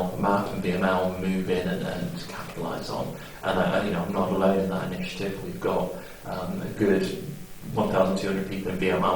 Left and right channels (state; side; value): identical; both; correlation 1.00